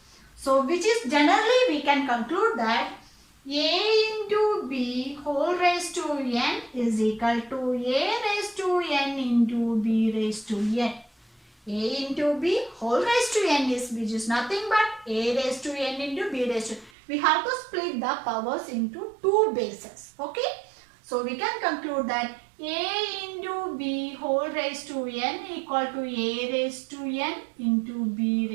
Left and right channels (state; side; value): drops out; left; at 16.9 s